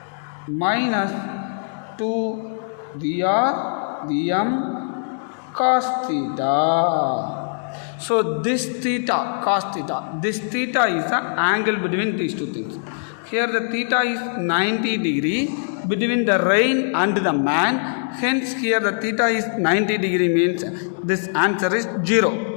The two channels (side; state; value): right; silent; digital silence